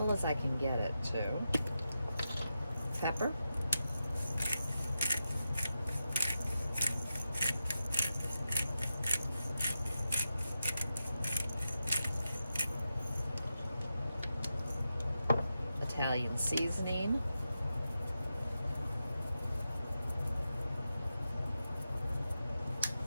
as I can get it to. Pepper. Italian seasoning.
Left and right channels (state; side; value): inverted; both; correlation -0.89